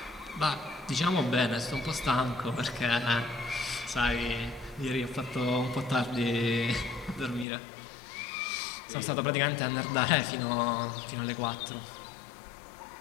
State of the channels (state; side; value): drops out; right; at 7.5 s